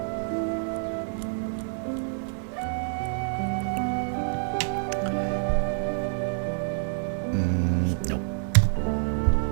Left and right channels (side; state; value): left; silent; 60 dB below the other